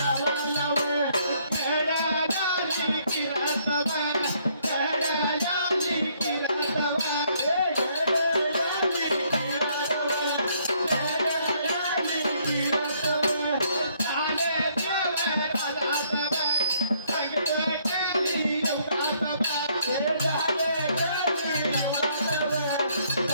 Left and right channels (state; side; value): inverted; both; correlation -0.67